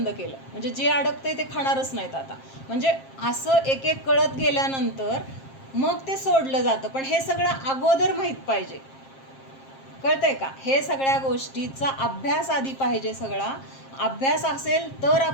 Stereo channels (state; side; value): late; right; 7.5 ms